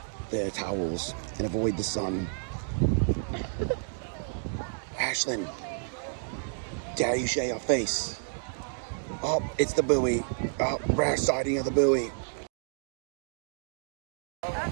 their towels and avoid the sun. Ashlyn, dare you share your face? Oh, it's the buoy. Oh, rare sighting of the buoy.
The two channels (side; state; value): left; silent; digital silence